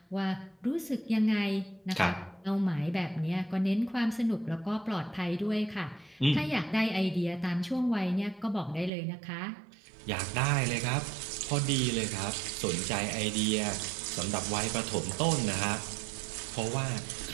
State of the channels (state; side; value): drops out; left; at 8.9 s